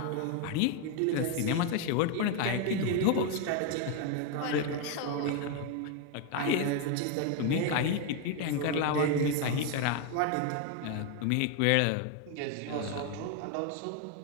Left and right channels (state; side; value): different; both; correlation 0.01